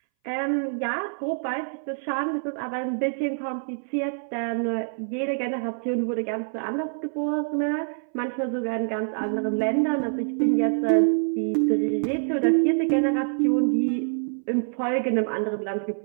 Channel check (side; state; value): left; silent; 61 dB below the other